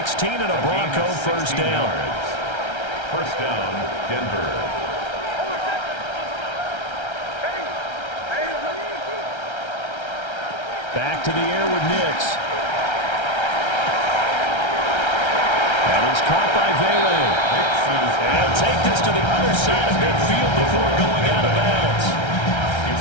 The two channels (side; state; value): right; late; 1.3 ms